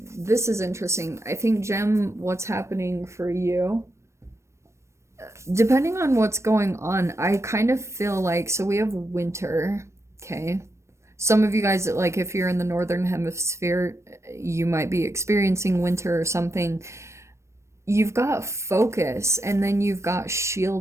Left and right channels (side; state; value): left; late; 0.13 ms